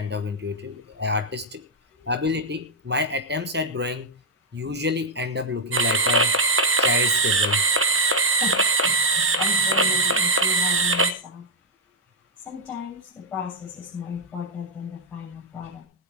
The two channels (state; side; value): normal; both; correlation -0.01